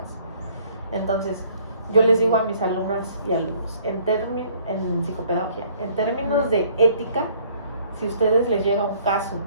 Entonces, yo les digo a mis alumnas y alumnos, en psicopedagogía, en términos de ética, si ustedes les llega un caso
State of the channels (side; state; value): both; inverted; correlation -0.59